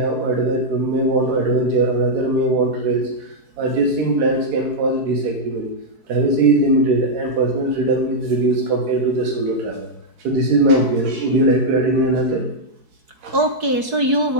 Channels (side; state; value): left; late; 4.7 ms